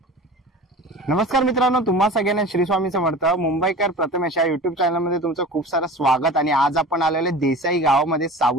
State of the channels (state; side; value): normal; both; correlation 0.37